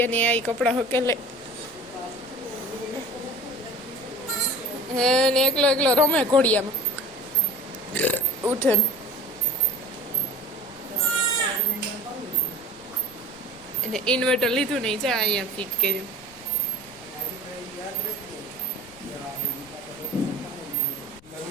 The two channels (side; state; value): left; noise; rumble, 24 dB below the sound